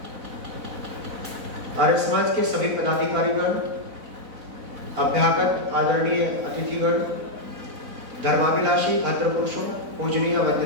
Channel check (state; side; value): late; left; 4.0 ms